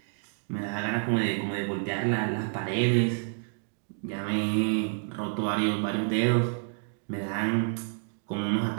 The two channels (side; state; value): left; silent; 56 dB below the other